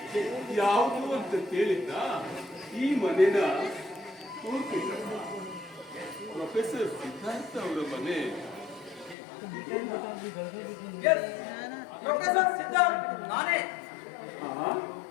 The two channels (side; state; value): right; drops out; at 9.2 s